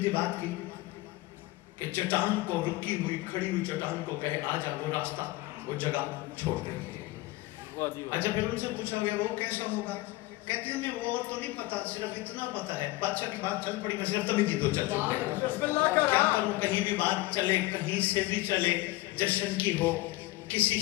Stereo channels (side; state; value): right; quieter; 19.1 dB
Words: بات کی کہ چٹان کو، رکی ہوئی کھڑی ہوئی چٹان کو کہے آ جا، وہ راستہ وہ جگہ چھوڑ دے گی۔ اچھا پھر ان سے پوچھا گیا وہ کیسا ہوگا؟ کہتے ہیں ہمیں وہ تو نہیں پتا، صرف اتنا پتا ہے، بادشاہ کی بات چل پڑی، میں صرف تبھی کی تو چل پڑی، کیا کروں، کہیں بھی بات چلے، کہیں سے بھی چلے، جشن کی ہو، کسی